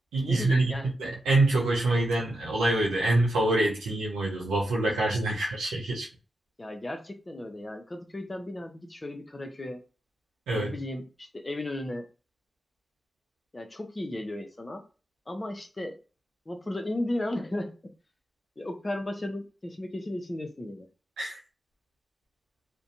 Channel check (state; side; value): normal; both; correlation 0.86